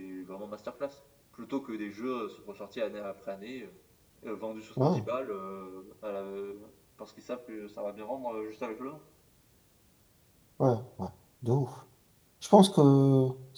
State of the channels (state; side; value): identical; both; correlation 1.00